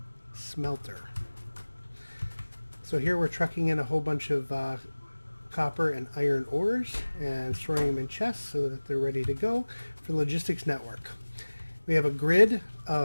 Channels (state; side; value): inverted; both; correlation -1.00